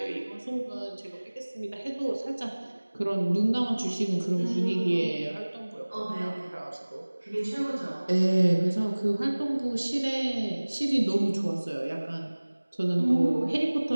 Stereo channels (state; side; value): inverted; both; correlation -1.00